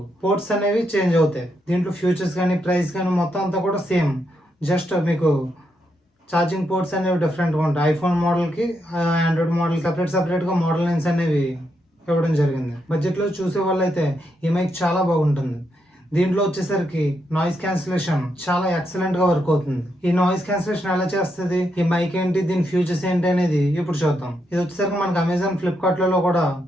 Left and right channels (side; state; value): both; normal; correlation 0.81